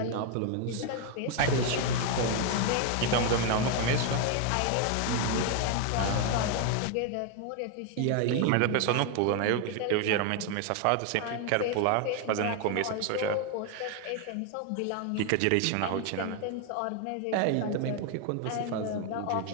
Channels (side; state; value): both; different; correlation 0.01